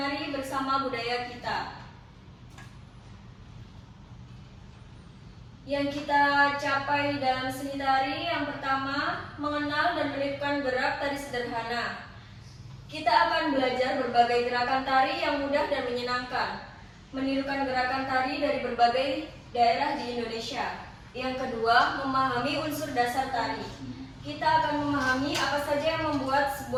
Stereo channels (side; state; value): both; identical; correlation 1.00